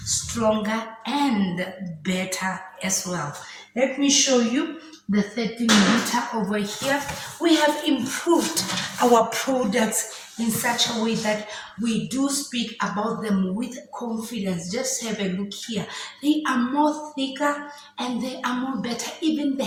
stronger and better as well. Let me show you the 13 liter over here. We have improved our products in such a way that we do speak about them with confidence. Just have a look here. They are more thicker and they are more better. Even the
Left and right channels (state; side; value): identical; both; correlation 1.00